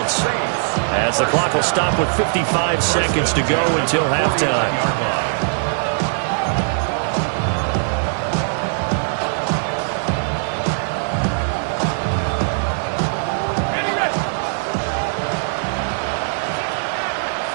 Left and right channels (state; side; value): silent; left; digital silence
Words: as the clock will stop with 55 seconds to go until halftime.